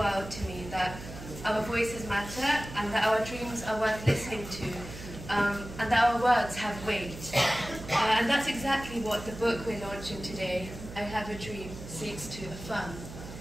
to me that our voices matter and that our dreams are worth listening to, and that our words have weight. And that's exactly what the book we're launching today, I Have a Dream, seeks to affirm.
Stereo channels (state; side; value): noise; right; hum, 12 dB below the sound